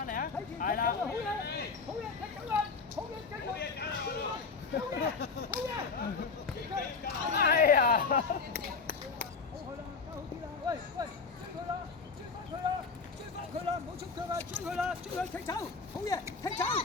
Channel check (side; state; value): right; quieter; 4.8 dB